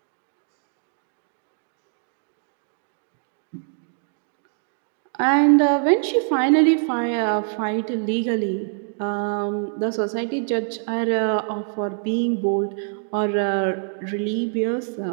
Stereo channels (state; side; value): silent; left; digital silence